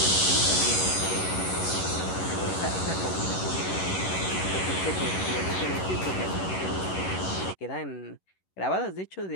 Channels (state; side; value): late; right; 11 ms